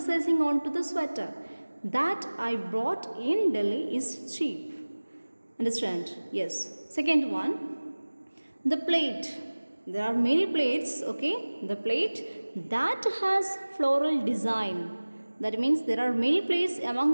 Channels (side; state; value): both; inverted; correlation -1.00